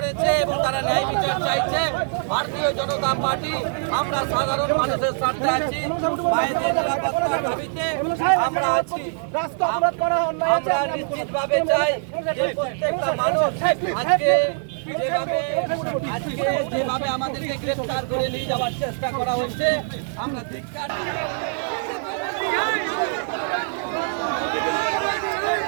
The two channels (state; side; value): silent; left; 60 dB below the other